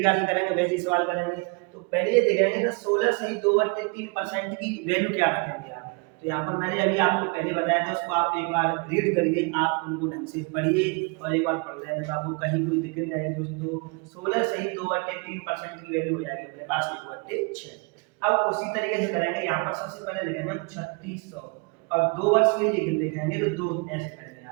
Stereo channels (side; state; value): left; quieter; 32.0 dB